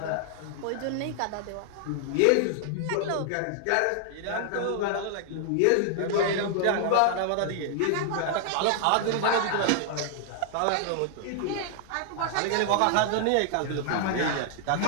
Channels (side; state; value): both; different; correlation -0.01